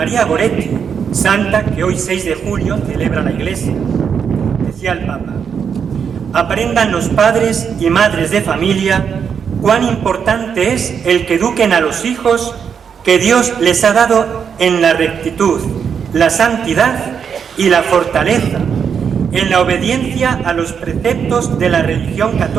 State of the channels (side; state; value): left; quieter; 7.0 dB